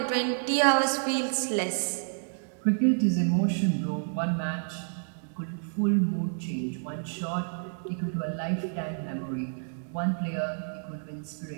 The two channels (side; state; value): left; silent; digital silence